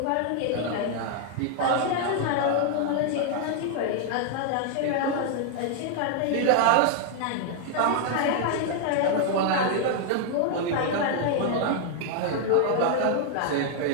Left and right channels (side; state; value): both; different; correlation 0.00